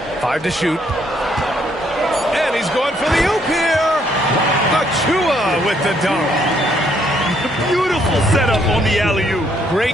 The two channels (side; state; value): both; normal; correlation 0.70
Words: 5 to shoot. And he's going for the oop here. Achua with the dunk. Beautiful setup on the alley-oop.